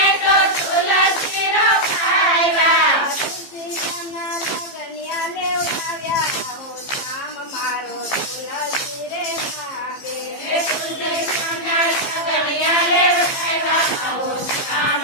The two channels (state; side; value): late; right; 15 ms